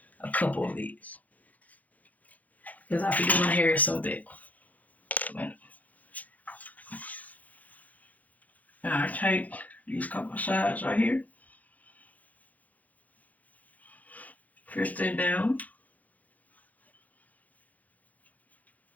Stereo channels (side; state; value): right; late; 0.078 ms